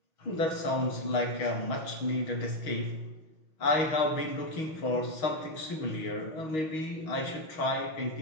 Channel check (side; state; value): right; late; 6.3 ms